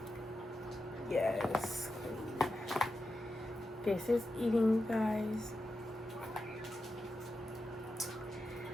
Yes. This is eating, guys.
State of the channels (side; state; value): both; normal; correlation 0.90